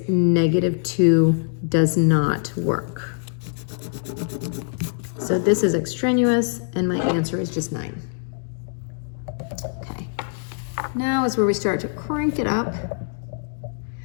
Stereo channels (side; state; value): right; silent; digital silence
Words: negative 2. Does not work. So this is extraneous, and my answer is just 9. Okay. Now is where we start to crank it up.